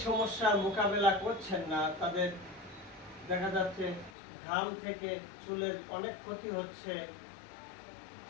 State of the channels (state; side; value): drops out; right; at 4.2 s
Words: সমস্যার মোকাবেলা করছেন না, তাদের দেখা যাচ্ছে ঘাম থেকে চুলের অনেক ক্ষতি হচ্ছে।